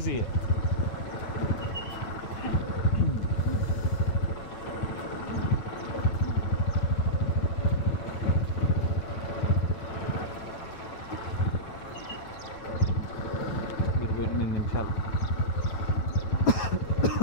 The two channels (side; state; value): right; late; 9.1 ms